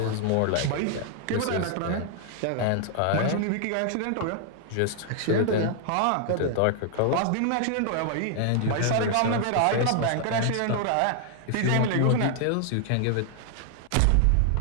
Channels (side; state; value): both; different; correlation 0.00